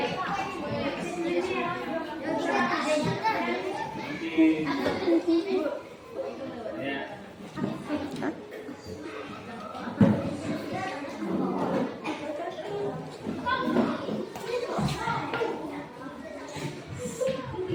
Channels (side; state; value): both; identical; correlation 1.00